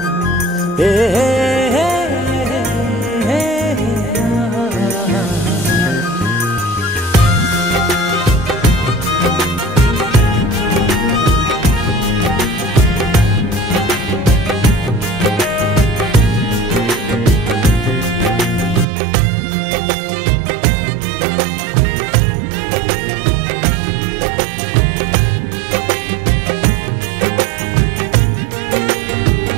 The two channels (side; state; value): left; drops out; at 18.9 s